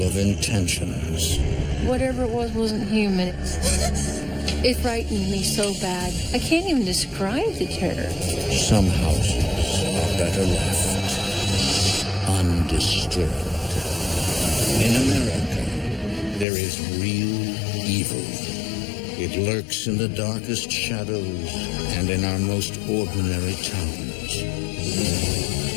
of intentions. Whatever it was wasn't human. It frightened me so bad. I can't even describe the terror. Some houses are better left undisturbed. In America, there is real evil. It lurks in the darkest shadows and in our most ordinary towns.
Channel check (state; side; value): drops out; right; at 16.4 s